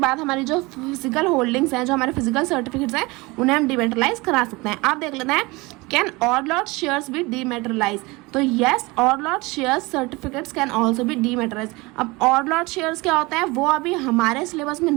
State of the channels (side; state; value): left; quieter; 23.8 dB